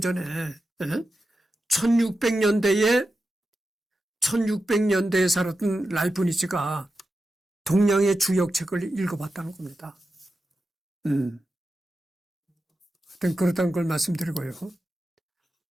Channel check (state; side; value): normal; both; correlation 0.91